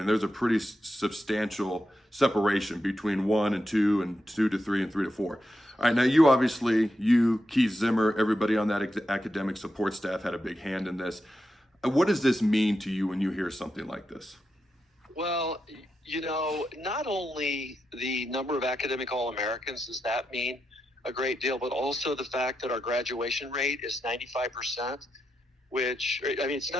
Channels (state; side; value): normal; both; correlation 0.87